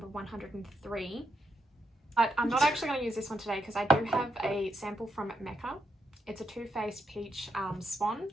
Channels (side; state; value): both; normal; correlation 0.80